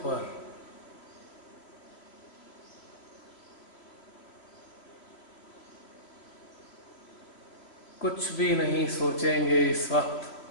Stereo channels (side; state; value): right; late; 3.0 ms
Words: पर। कुछ भी नहीं सोचेंगे इस वक्त